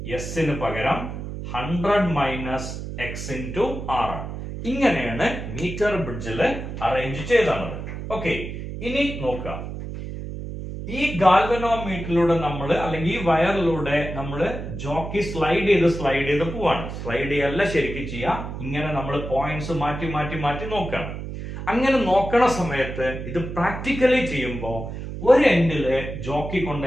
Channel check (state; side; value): noise; right; hum, 7 dB below the sound